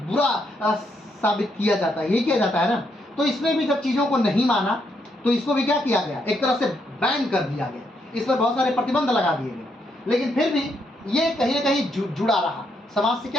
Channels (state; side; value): normal; both; correlation 0.77